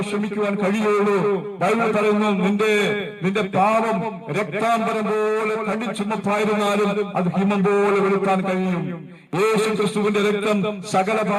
ക്ഷമിക്കുവാൻ കഴിയുള്ളൂ. ബൈബിൾ പറയുന്നു, നിന്റെ പാപം രക്താംബരം പോലെ കടിച്ചുമപ്പായിരുന്നാലും അത് ഹിമം പോലെ വെളുക്കാൻ കഴിയും. യേശു ക്രിസ്തുവിന്റെ രക്തം സകല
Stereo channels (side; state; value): both; identical; correlation 1.00